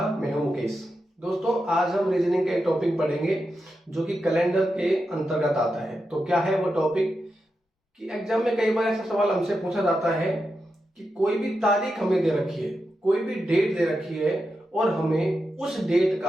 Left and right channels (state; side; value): normal; both; correlation 0.88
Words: मैं हूं मुकेश। दोस्तों, आज हम रीजनिंग का एक टॉपिक पढ़ेंगे जो कि कैलेंडर के अंतर्गत आता है। तो क्या है वो टॉपिक कि एग्जाम में कई बार ऐसा सवाल हमसे पूछा जाता है कि कोई भी तारीख हमें दे रखी है, कोई भी डेट दे रखी है और हमें उस डेट